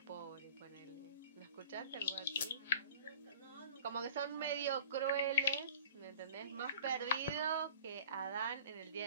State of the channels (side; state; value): both; inverted; correlation -0.44